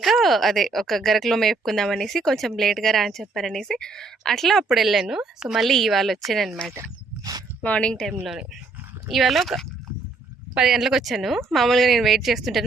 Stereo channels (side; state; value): left; quieter; 3.8 dB